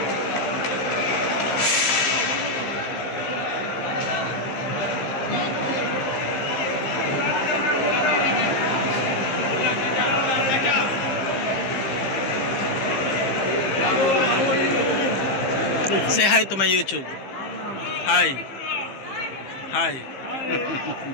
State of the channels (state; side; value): late; right; 15 ms